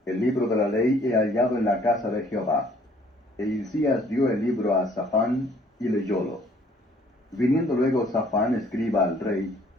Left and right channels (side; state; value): both; normal; correlation 0.60